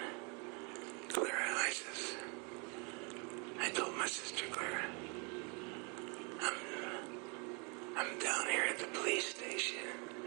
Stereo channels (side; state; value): left; quieter; 33.5 dB